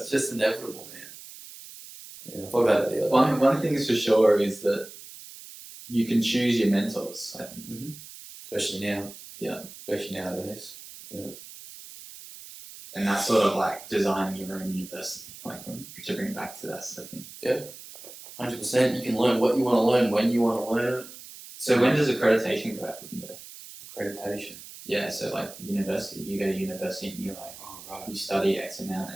just inevitable, man. Yeah, I thought about it the other day. One thing is for sure is that you can choose your mentors, I think. Especially now. Yeah. Especially nowadays. Yeah. And that's sort of like designing your own university, like to bring it back to that sort of thing. Yeah. 100%. You can learn what you want to learn when you want to learn it. So when does accreditation go out the window? Accreditation. Yeah, so like university, you go to university and you're like, you study X amount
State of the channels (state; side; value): noise; right; hiss, 16 dB below the sound